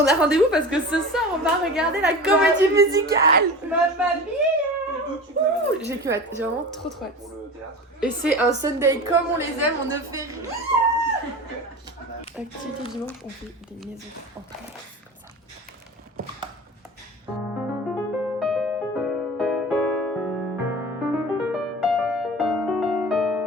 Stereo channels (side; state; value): both; normal; correlation 0.33